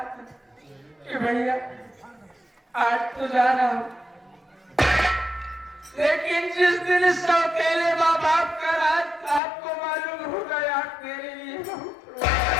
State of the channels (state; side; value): drops out; right; at 9.4 s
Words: कि भैया आज तो जा रहा हूँ, लेकिन जिस दिन इस अकेले माँ बाप का राज आपको मालूम हो गया मेरे लिए बहुत